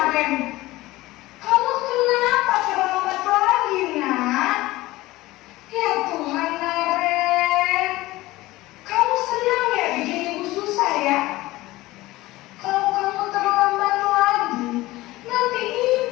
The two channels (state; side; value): quieter; right; 18.6 dB